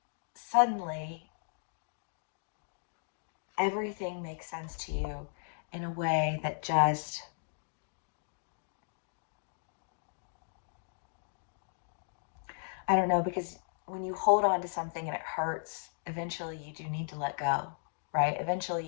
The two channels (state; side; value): silent; right; digital silence